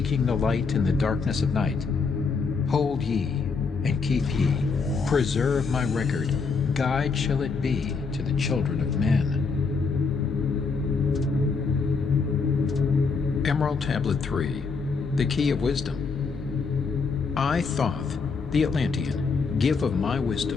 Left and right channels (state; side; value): quieter; right; 4.8 dB